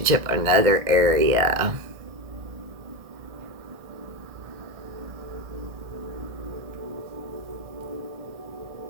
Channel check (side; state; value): left; late; 1.7 ms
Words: or another area.